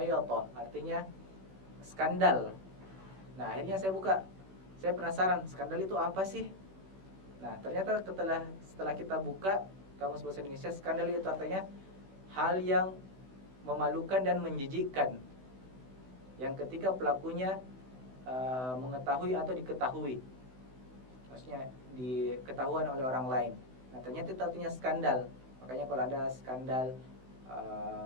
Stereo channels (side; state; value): left; late; 16 ms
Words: artinya skandal. Nah akhirnya saya buka, saya penasaran skandal itu apa sih? Nah ternyata setelah kita buka kamus bahasa Indonesia, skandal itu artinya hal yang memalukan dan menjijikkan, yang ketika pelakunya mengetahui atau diketahui, maksudnya diketahuan oleh orang lain. Nah ternyata itu artinya skandal. Makanya kalau ada skandal